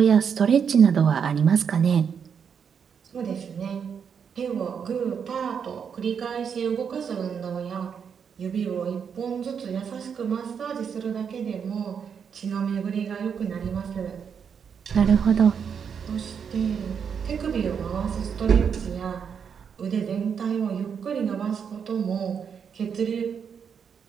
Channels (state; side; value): quieter; left; 7.0 dB